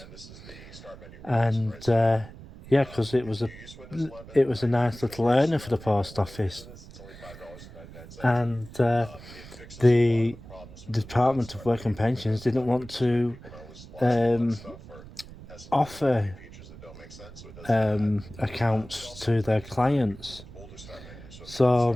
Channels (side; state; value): right; noise; rumble, 17 dB below the sound